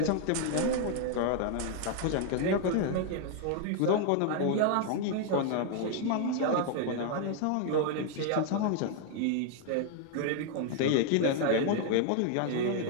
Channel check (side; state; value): both; different; correlation 0.00